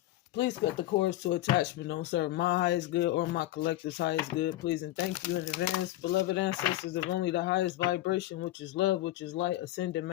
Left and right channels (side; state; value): right; quieter; 15.5 dB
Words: Please cut the cords to attachment don't serve my highest good or my collective's highest good. Please and thank you in advance. Beloved ancestors of only the highest vibration, which is love, which is light, ascended